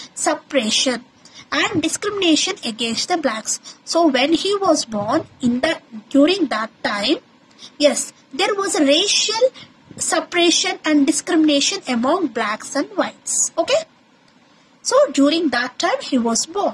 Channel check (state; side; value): identical; both; correlation 1.00